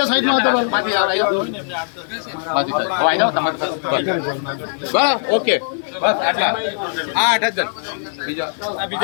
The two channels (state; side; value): silent; right; digital silence